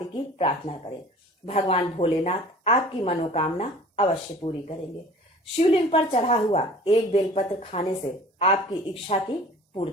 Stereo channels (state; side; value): normal; both; correlation 0.46